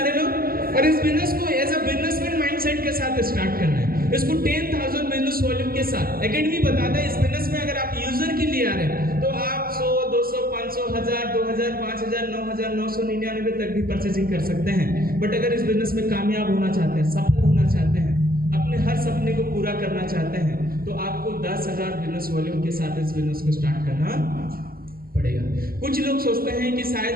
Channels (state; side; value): late; left; 0.43 ms